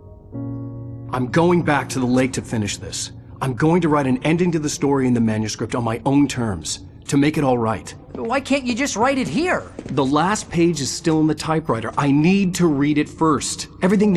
I'm going back to the lake to finish this. I'm going to write an ending to the story in the manuscript on my own terms, to make it all right. Why can't you just write it here? The last page is still in the typewriter. I need to read it first. Everything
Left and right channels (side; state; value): both; identical; correlation 1.00